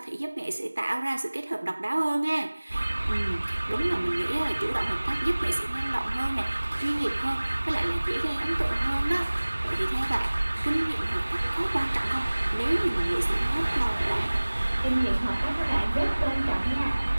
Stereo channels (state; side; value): inverted; both; correlation -1.00